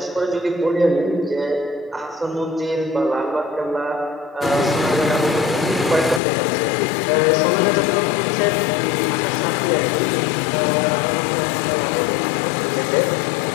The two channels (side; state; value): right; drops out; at 6.2 s